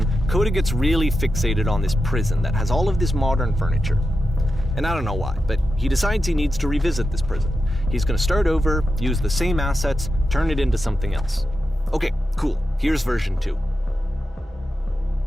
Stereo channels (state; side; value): normal; both; correlation 0.89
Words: Coda gets really fixated on this prison that has all of this modern furniture. And I don't know why, but he decides he needs to revisit this prison. He's gonna start over, use the same assets, turn it into something else. Okay, cool. Here's version 2.